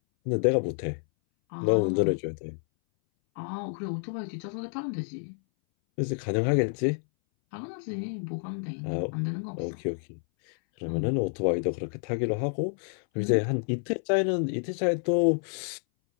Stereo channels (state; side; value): silent; right; 59 dB below the other